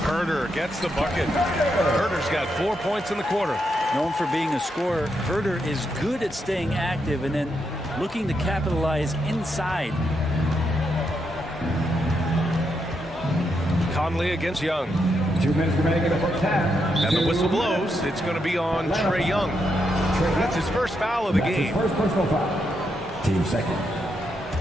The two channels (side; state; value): both; normal; correlation 0.81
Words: Herder gets the bucket. Herder's got 4 points in the quarter. Known for being a scorer, Herder is good at staying active and then looking to capitalize inside. Conley against Young. 2 minutes remaining in the first half. And the whistle blows. It's going to be on Trae Young. That's his first foul of the game. First personal foul. Team second.